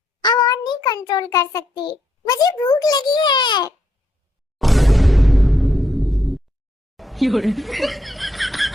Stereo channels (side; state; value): both; normal; correlation 0.77